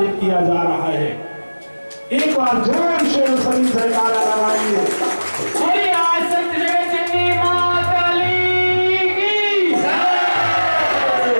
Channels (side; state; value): both; inverted; correlation -1.00